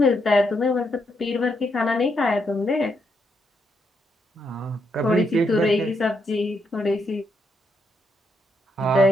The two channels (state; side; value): normal; both; correlation 0.78